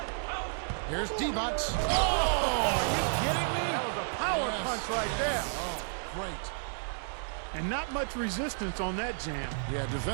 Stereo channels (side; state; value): left; silent; 57 dB below the other